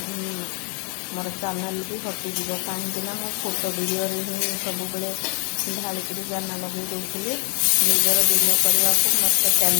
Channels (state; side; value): quieter; right; 38.4 dB